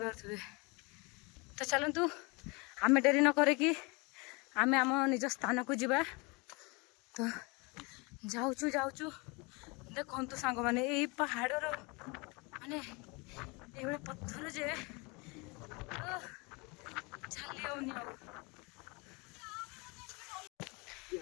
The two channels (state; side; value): quieter; right; 28.2 dB